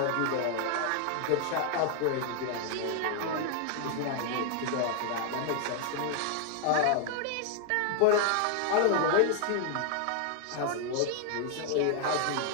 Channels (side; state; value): both; different; correlation 0.00